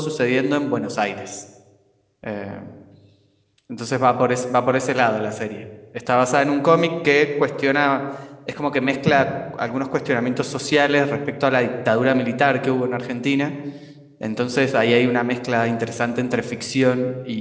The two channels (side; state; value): both; identical; correlation 1.00